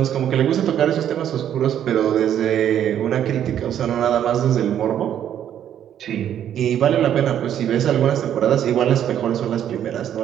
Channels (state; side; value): quieter; left; 10.2 dB